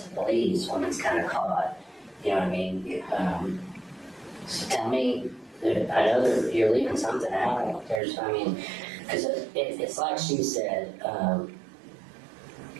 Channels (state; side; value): drops out; left; at 8.0 s